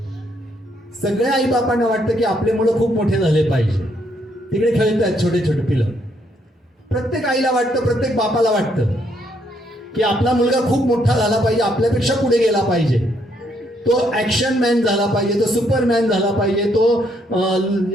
सगळ्या आई बापांना वाटतं की आपले मुलं खूप मोठे झाले पाहिजे. तिकडे खेळतात छोटे छोटे पिलं. प्रत्येक आईला वाटतं, प्रत्येक बापाला वाटतं की आपला मुलगा खूप मोठा झाला पाहिजे, आपल्यापेक्षा पुढे गेला पाहिजे, तो ऍक्शन मॅन झाला पाहिजे, तो सुपरमॅन झाला पाहिजे, तो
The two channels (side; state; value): both; normal; correlation 0.72